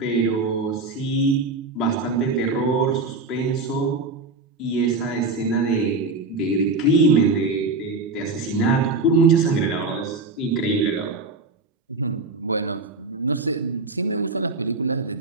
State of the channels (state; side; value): quieter; left; 3.5 dB